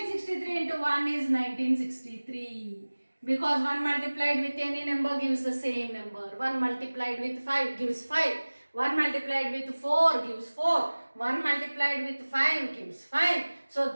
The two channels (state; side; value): inverted; both; correlation -1.00